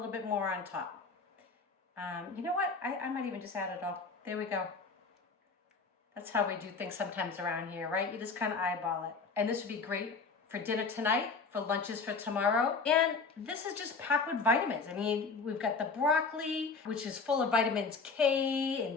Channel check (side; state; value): right; quieter; 4.6 dB